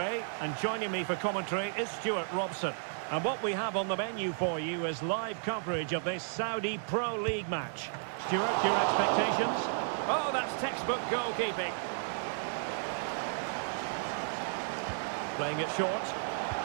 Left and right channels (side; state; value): left; silent; digital silence